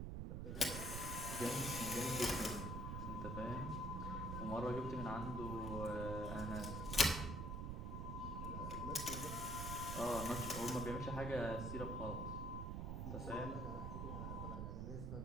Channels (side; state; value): right; noise; rumble, 3 dB below the sound